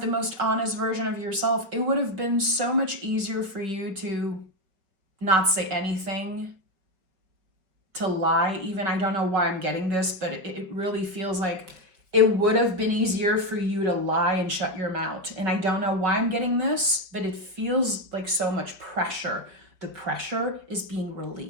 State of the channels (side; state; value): left; late; 5.4 ms